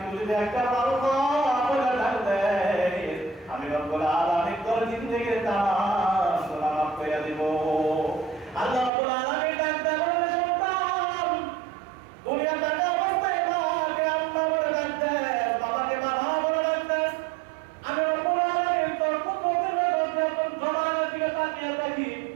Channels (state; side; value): drops out; left; at 8.9 s